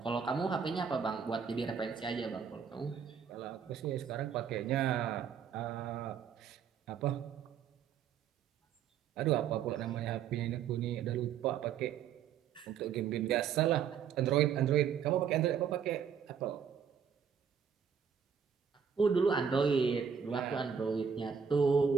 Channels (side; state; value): left; quieter; 7.3 dB